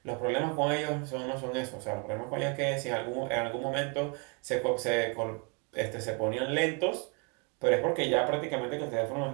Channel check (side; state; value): left; quieter; 34.2 dB